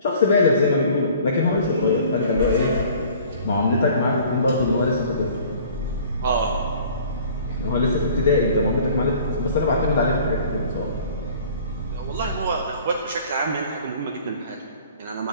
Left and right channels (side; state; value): both; inverted; correlation -0.50